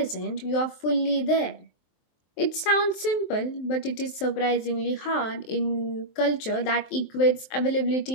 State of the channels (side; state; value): right; late; 23 ms